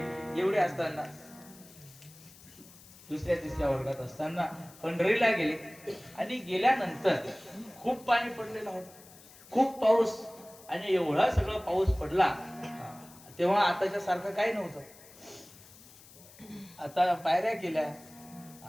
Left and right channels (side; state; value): left; noise; hiss, 22 dB below the sound